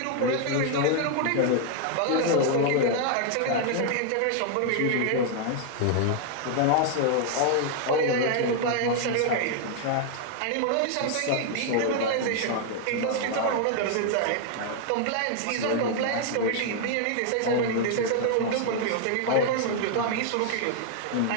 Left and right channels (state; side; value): different; both; correlation 0.00